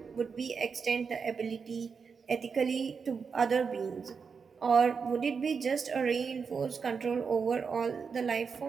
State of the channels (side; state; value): left; quieter; 5.6 dB